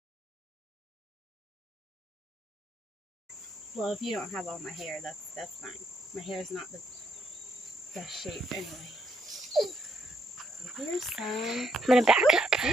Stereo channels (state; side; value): normal; both; correlation 0.73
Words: Well, if you don't have all my hair, that's fine. My hair is not the best shape anyway. So here's some. I'm gonna back up.